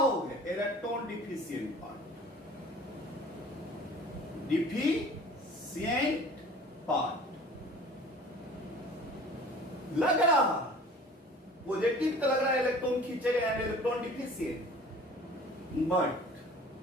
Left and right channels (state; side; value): normal; both; correlation 0.46